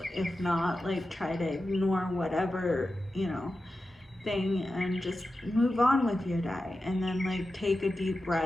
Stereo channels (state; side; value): normal; both; correlation 0.92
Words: If not, like try to ignore whatever, you know, thing and just move on with your day. And then like take a deep